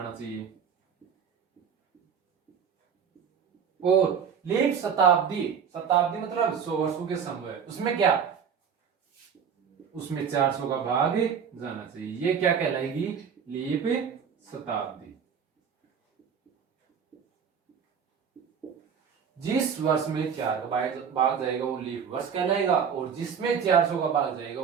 चाहिए। और लीप शताब्दी, शताब्दी मतलब 100 वर्षों के समूह, उसमें क्या, उसमें 400 का भाग जाना चाहिए, ये क्या कहलाएगी लीप शताब्दी। जिस वर्ष में 4 का भाग जाएगा वो लीप वर्ष कहलाएगा, और जिसमें 400 का भाग जाएगा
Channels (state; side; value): quieter; left; 7.1 dB